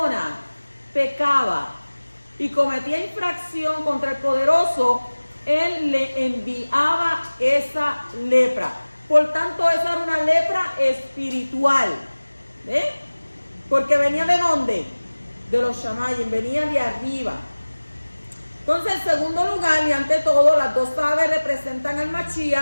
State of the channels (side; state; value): both; inverted; correlation -1.00